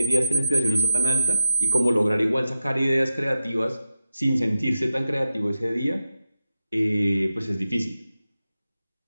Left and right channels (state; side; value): inverted; both; correlation -0.87